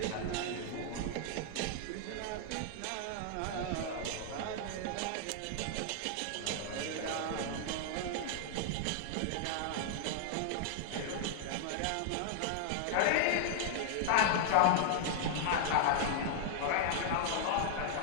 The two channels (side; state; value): both; different; correlation -0.01